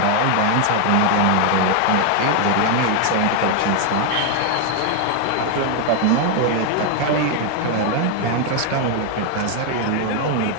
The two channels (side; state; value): both; different; correlation 0.00